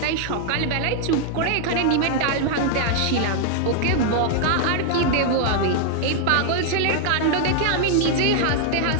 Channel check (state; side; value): different; both; correlation 0.00